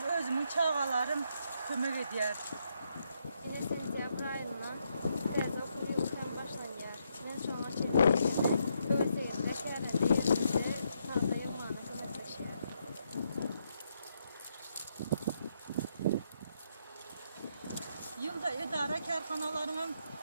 özümün çağalarım kömək ediyor. Yine sentyabr ayından biraz okul yılından başlanıyor. Ben sonra çekildim. Öğüteyimde terende yerimde paxta yığmanı güneşleşiyor. Yılda idare karxanalarının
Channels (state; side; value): inverted; both; correlation -0.77